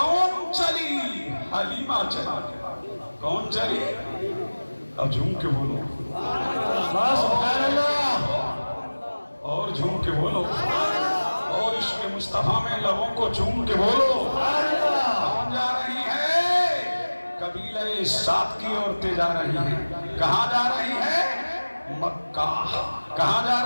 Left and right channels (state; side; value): inverted; both; correlation -1.00